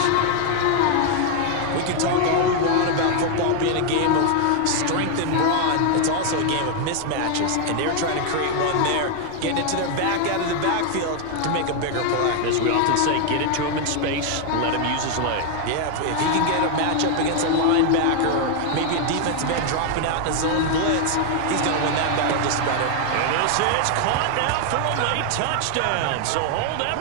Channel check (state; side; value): different; both; correlation 0.00